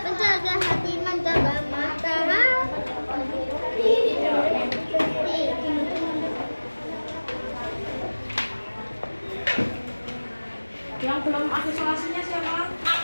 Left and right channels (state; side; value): inverted; both; correlation -1.00